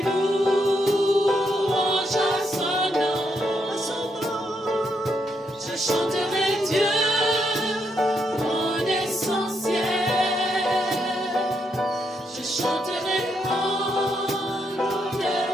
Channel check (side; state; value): both; normal; correlation 0.78